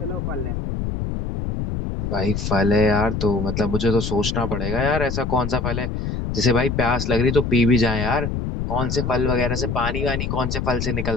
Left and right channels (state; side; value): noise; left; rumble, 3 dB below the sound